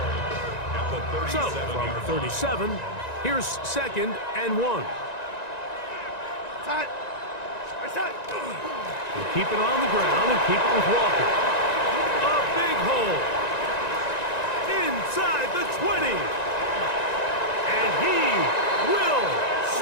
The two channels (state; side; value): late; right; 1.9 ms